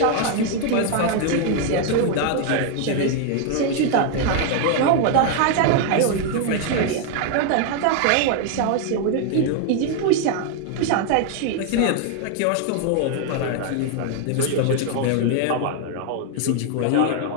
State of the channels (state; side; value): different; both; correlation 0.00